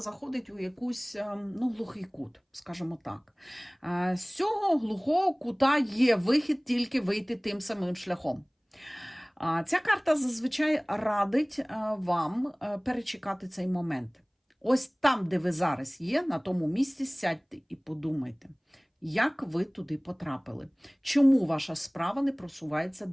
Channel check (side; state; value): both; identical; correlation 1.00